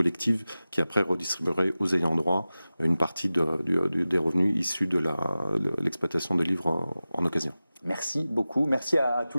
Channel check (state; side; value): inverted; both; correlation -0.96